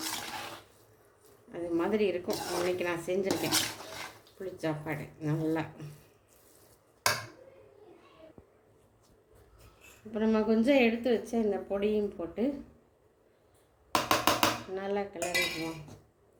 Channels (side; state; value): both; identical; correlation 1.00